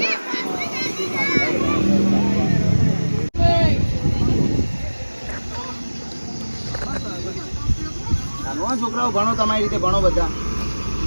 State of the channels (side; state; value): both; inverted; correlation -1.00